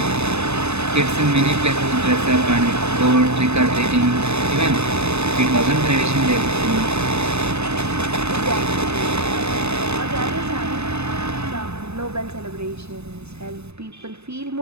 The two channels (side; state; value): left; late; 0.80 ms